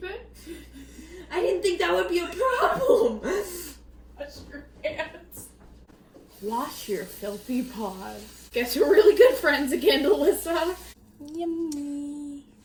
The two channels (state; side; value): identical; both; correlation 1.00